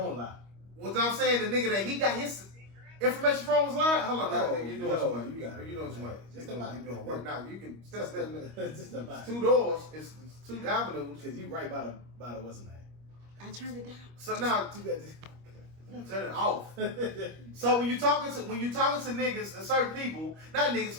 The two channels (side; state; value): left; late; 25 ms